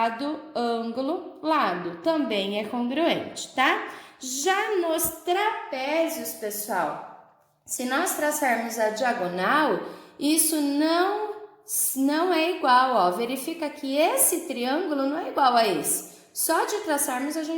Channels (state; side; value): identical; both; correlation 1.00